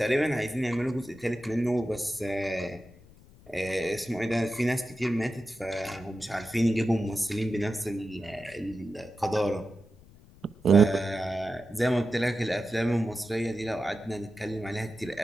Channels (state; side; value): noise; left; rumble, 23 dB below the sound